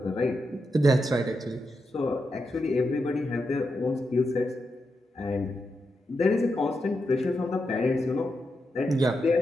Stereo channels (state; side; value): normal; both; correlation 0.86